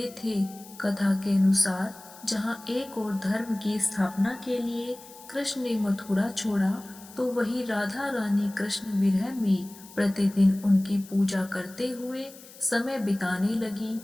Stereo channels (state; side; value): noise; left; hiss, 20 dB below the sound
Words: थे। कथा के अनुसार जहाँ एक और धर्म की स्थापना के लिए कृष्ण ने मथुरा छोड़ा, तो वही राधा रानी कृष्ण विरह में प्रतिदिन उनकी पूजा करते हुए समय बिताने लगी।